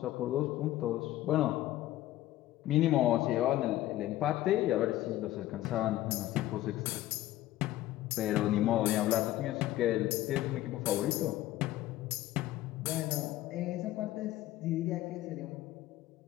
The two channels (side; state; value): right; quieter; 14.9 dB